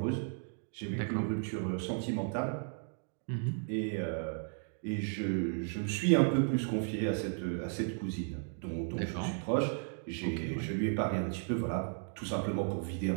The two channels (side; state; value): left; silent; 55 dB below the other